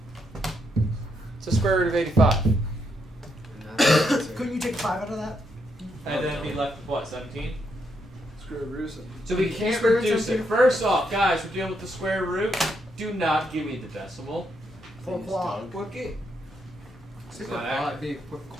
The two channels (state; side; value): normal; both; correlation 0.78